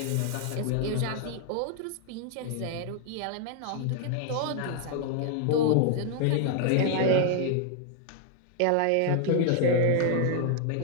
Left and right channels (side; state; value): both; different; correlation 0.00